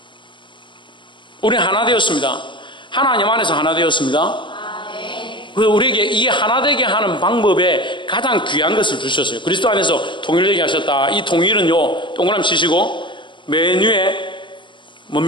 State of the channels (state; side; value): late; right; 0.23 ms